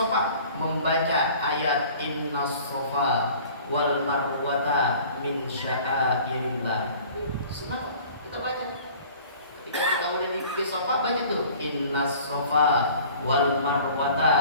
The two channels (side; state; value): both; inverted; correlation -0.48